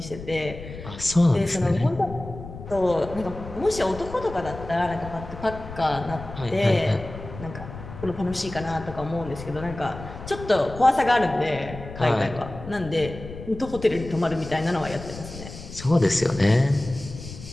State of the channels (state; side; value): noise; left; rumble, 12 dB below the sound